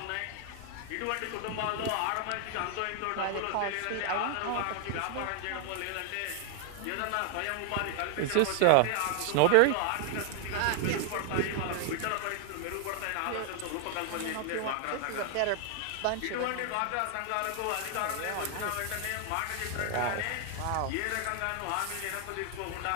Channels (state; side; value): different; both; correlation 0.00